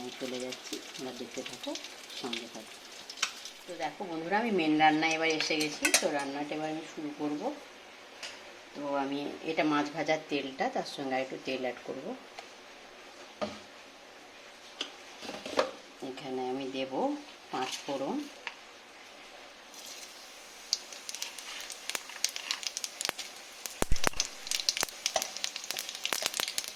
চলে যাচ্ছি, তোমরা দেখতে থাকো, সঙ্গে থাকো। তো দেখো বন্ধুরা, আমি মেন রান্নায় এবার এসে গেছি। তো রান্নাটা এবার আমি শুরু করব। তো আমি এটা মাছ ভাজার তেলটা, তার সঙ্গে আর একটু তেল অ্যাড করব। এখানে আমি দেব 5 ফোড়ন,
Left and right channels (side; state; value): both; identical; correlation 1.00